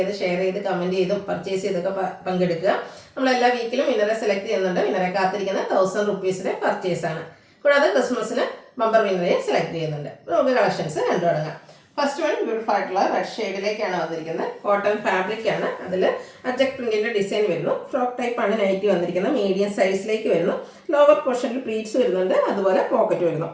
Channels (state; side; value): identical; both; correlation 1.00